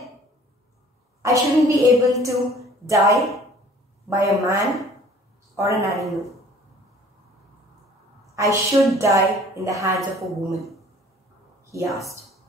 I shouldn't be able to die by a man or an animal. I should die in the hands of a woman, he asked.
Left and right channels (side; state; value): both; normal; correlation 0.52